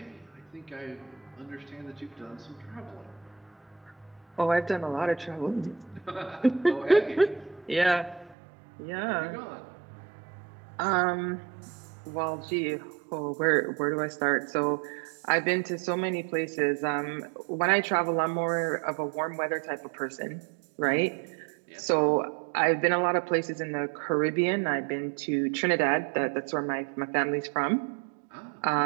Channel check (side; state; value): left; drops out; at 8.3 s